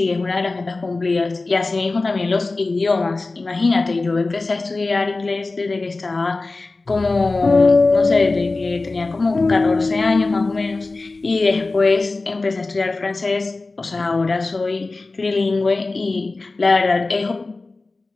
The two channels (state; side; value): quieter; right; 3.4 dB